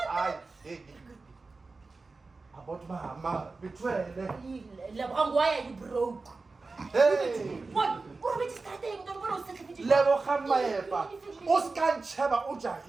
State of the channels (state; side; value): quieter; left; 3.8 dB